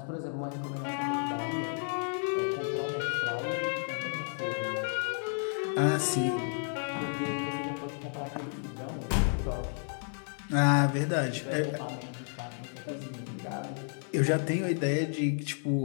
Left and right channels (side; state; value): right; silent; 57 dB below the other